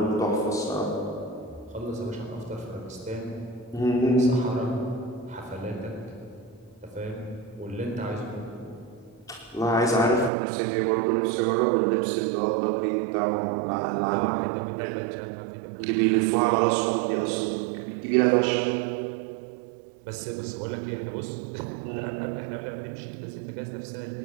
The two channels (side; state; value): left; drops out; at 10.3 s